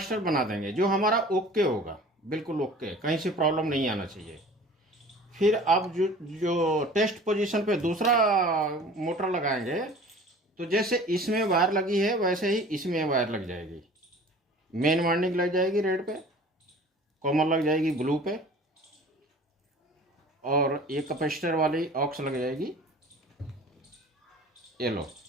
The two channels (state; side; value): normal; both; correlation 0.45